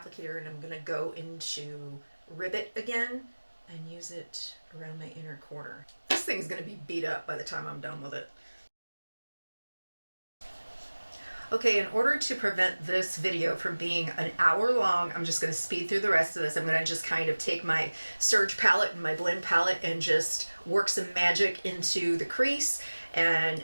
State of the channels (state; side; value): inverted; both; correlation -1.00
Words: and I'm going to go into Ribbit again and use it around my inner corner. This thing's going to be beat up by the time I'm done with it. Okay, in order to prevent this video from being an hour long, I'm just going to speed through the rest of this. I'm going to just kind of take my Surge palette and my blend palette and just work some magic into the crease and